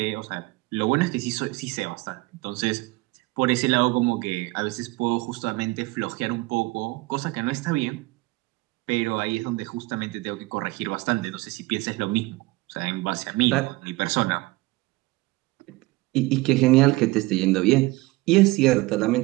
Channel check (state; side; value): quieter; left; 21.2 dB